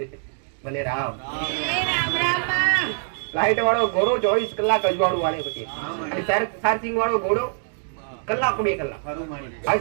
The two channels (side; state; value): left; silent; digital silence